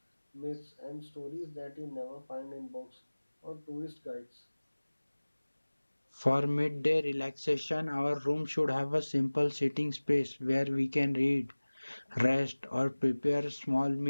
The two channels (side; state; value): both; inverted; correlation -1.00